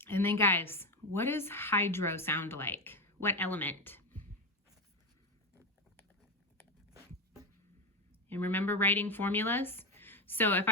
then guys, what does hydro sound like? What element? And remember writing formulas? So if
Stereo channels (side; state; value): both; normal; correlation 0.13